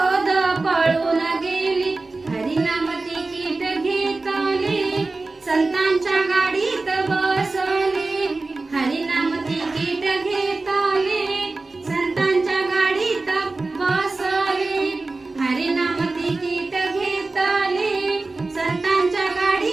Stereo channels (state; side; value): quieter; left; 3.4 dB